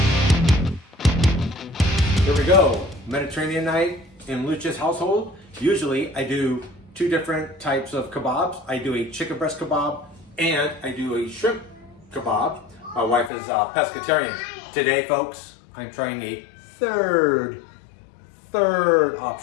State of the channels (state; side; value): drops out; right; at 13.3 s